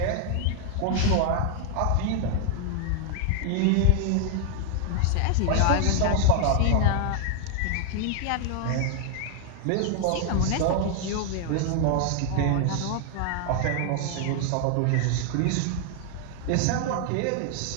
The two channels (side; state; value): both; different; correlation 0.00